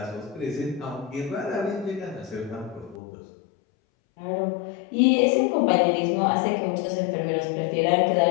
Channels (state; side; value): drops out; right; at 3.0 s